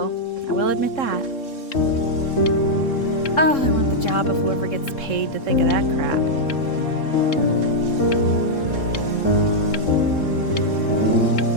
I will admit that. Oh, I want the job of whoever gets paid to think of that crap.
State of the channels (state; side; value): late; right; 3.7 ms